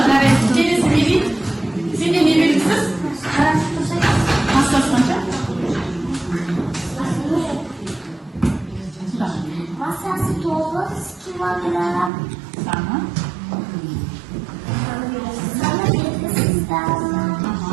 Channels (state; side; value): drops out; left; at 12.1 s